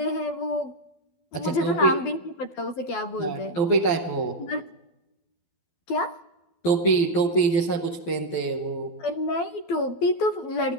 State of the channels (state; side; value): late; right; 12 ms